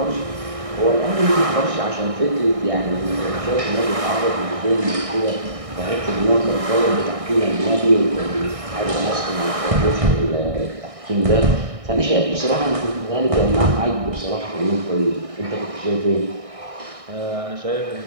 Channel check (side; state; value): left; late; 1.6 ms